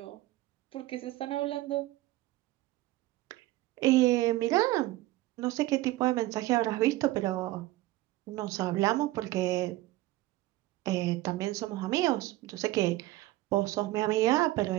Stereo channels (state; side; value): quieter; left; 17.4 dB